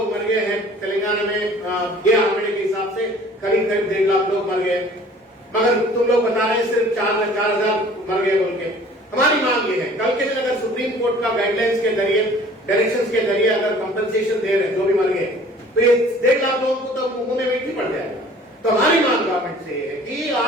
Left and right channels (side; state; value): both; normal; correlation 0.50